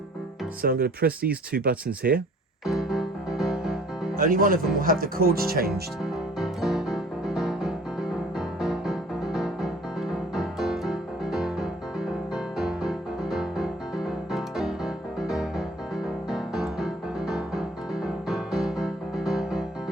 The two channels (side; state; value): both; normal; correlation 0.54